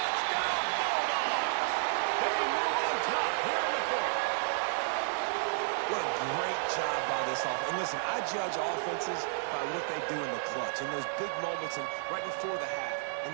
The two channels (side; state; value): left; silent; 56 dB below the other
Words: Bulldogs! They move on top here in the fourth. What a great job by this offense. And listen, I judge offenses by what they do in the clutch, in those big moments and right before the half, in